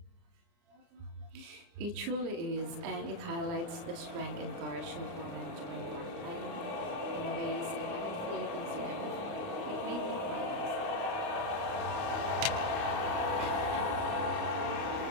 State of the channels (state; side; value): late; left; 29 ms